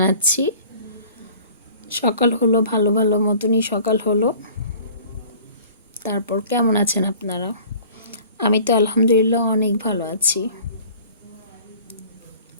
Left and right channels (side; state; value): both; inverted; correlation -0.48